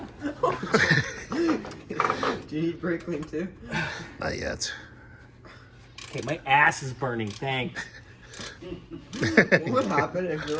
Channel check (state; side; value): identical; both; correlation 1.00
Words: Do you need brake clean too? Not yet. Okay, my ass is burning. Thanks. What would happen if you